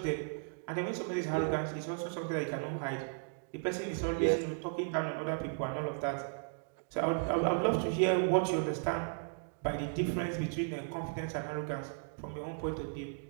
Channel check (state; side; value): silent; left; digital silence